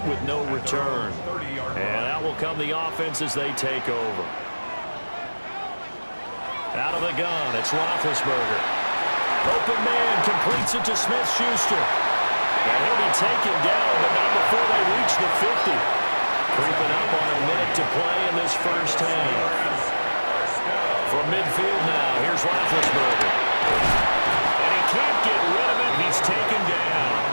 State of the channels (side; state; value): both; inverted; correlation -1.00